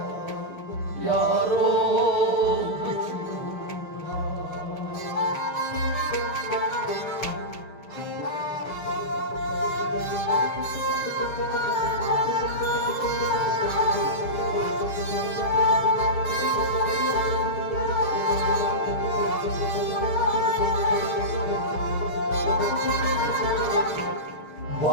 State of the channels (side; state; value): right; late; 6.4 ms